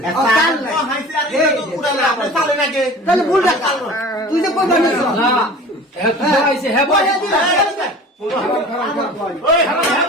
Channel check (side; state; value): both; normal; correlation 0.40